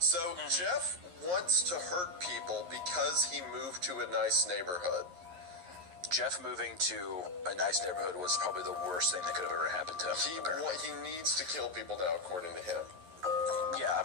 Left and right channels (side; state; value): left; late; 11 ms